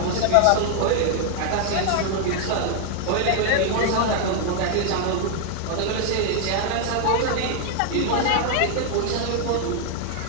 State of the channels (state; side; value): different; both; correlation 0.00